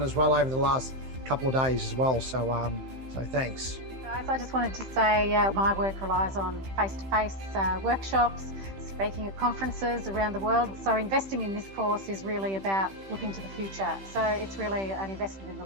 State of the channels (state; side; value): late; left; 15 ms